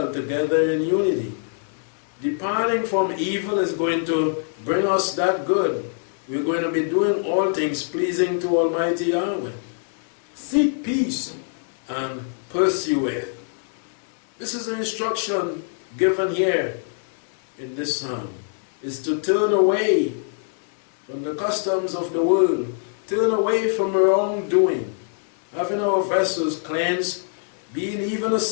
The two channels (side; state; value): right; silent; digital silence